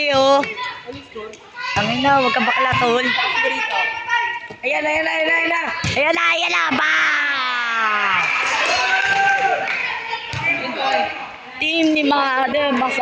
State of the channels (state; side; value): identical; both; correlation 1.00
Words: oh. Tangin na, huwag ka bakla, tol. Ayan na, ayan na, ayan na, ayan na! Ayan na, ayan na! Ba! Team ni Mado,